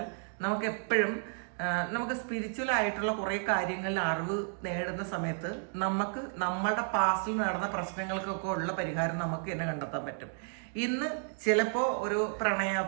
നമുക്ക് എപ്പോഴും നമുക്ക് സ്പിരിച്വൽ ആയിട്ടുള്ള കുറേ കാര്യങ്ങളിൽ അറിവ് നേടുന്ന സമയത്ത് നമുക്ക് നമ്മളുടെ പാസ്റ്റിൽ നടന്ന പ്രശ്നങ്ങൾക്കൊക്കെ ഉള്ള പരിഹാരം നമുക്ക് തന്നെ കണ്ടെത്താൻ പറ്റും. ഇന്ന് ചിലപ്പോൾ ഒരു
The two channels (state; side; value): silent; left; 56 dB below the other